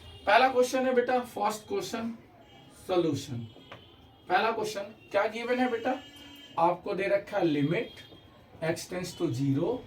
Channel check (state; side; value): identical; both; correlation 1.00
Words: पहला क्वेश्चन है बेटा, फर्स्ट क्वेश्चन सॉल्यूशन। पहला क्वेश्चन क्या गिवन है बेटा? आपको दे रखा है limit x tends to 0